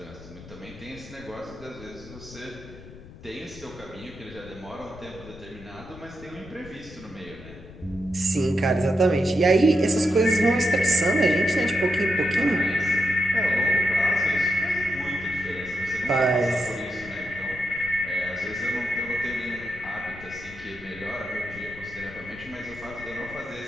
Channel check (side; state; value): left; noise; rumble, 17 dB below the sound